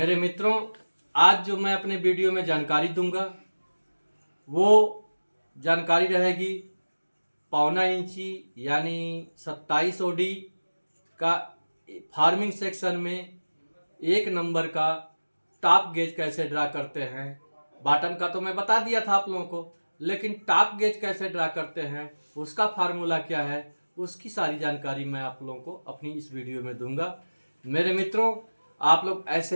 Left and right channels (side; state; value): both; inverted; correlation -1.00